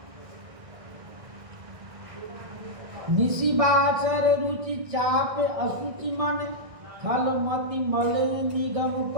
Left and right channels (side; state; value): left; late; 1.6 ms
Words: निशिबाचर रुचि चाप असुचि मन, खल मति मल निगम